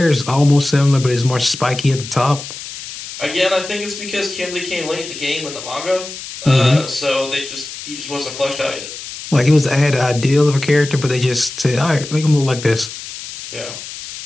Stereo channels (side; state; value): left; noise; hiss, 11 dB below the sound